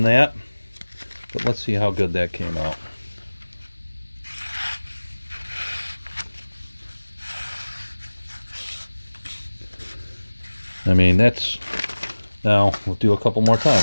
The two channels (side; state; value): both; inverted; correlation -1.00